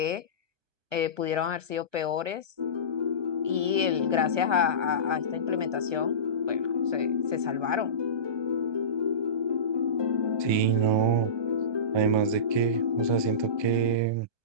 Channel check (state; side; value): late; left; 1.1 ms